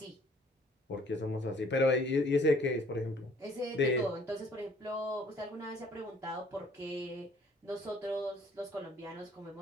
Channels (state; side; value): normal; both; correlation 0.58